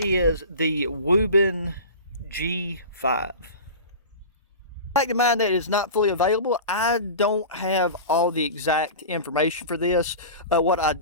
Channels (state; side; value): inverted; both; correlation -0.33